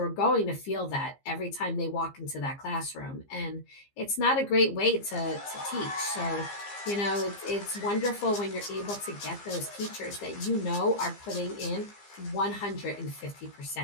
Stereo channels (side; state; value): right; late; 15 ms